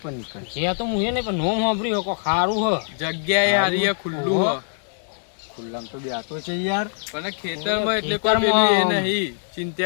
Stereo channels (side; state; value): right; silent; digital silence